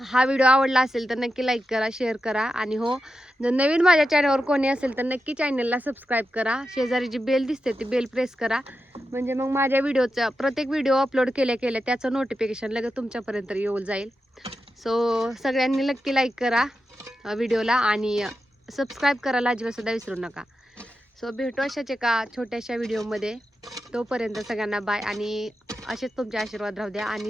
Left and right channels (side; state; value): both; normal; correlation 0.89